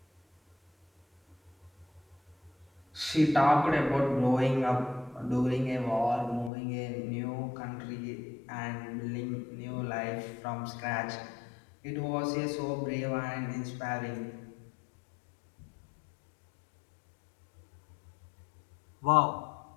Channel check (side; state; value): right; drops out; at 6.5 s